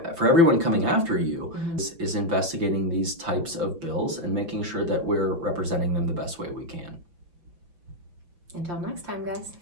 everyone coming after you is investigating these types of bills and making sure that we're representing them the best way we can. Until next time, guys.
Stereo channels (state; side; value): late; left; 5.9 ms